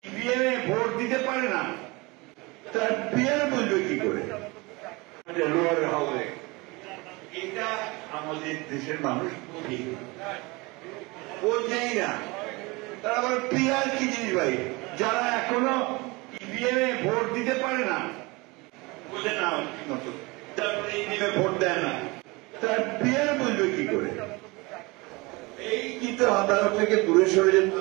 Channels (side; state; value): left; quieter; 24.9 dB